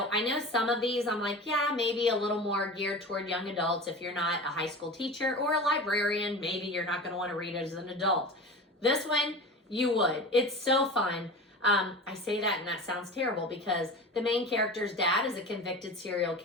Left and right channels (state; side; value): normal; both; correlation 0.33